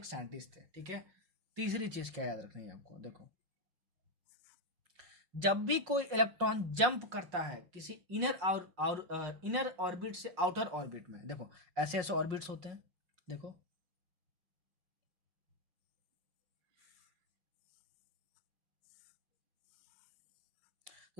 साइंटिस्ट थे, ठीक है। तीसरी चीज क्या याद रखनी है आपको? देखो, जब भी कोई इलेक्ट्रॉन जंप करता है किसी इनर ऑर्बिट से आउटर ऑर्बिट में, देखो ऐसे ऐसे ऑर्बिट्स होते हैं, देखो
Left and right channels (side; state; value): left; late; 5.5 ms